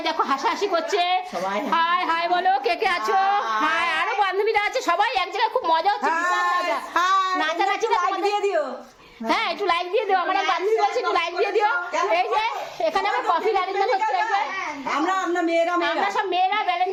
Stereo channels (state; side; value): identical; both; correlation 1.00